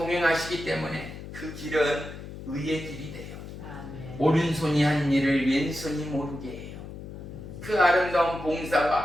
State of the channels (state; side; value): noise; left; hum, 11 dB below the sound